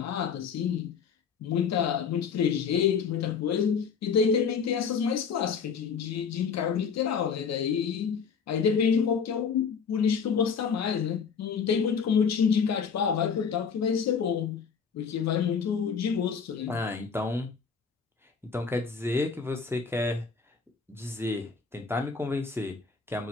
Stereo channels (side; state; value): right; quieter; 6.2 dB